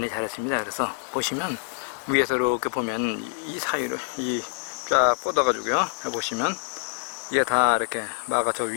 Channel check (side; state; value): right; silent; digital silence